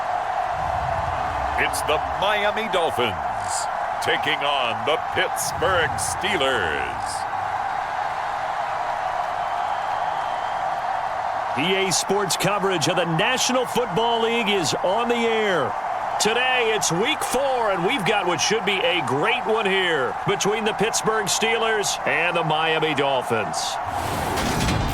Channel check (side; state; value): both; identical; correlation 1.00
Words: It's the Miami Dolphins taking on the Pittsburgh Steelers. EA Sports coverage of the National Football League is on the air. Today, it's Week 4, and we've got what should be a great one here between the Pittsburgh Steelers and the Miami Dolphins.